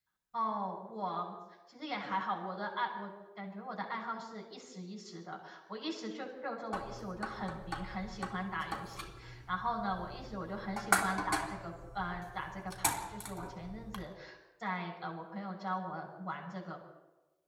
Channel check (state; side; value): identical; both; correlation 1.00